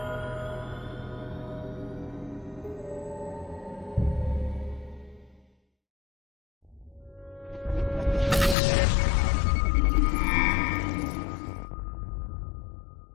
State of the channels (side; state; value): right; drops out; at 8.6 s